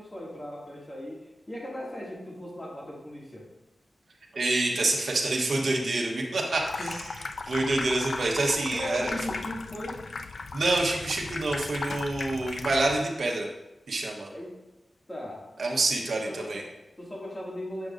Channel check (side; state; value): both; normal; correlation 0.93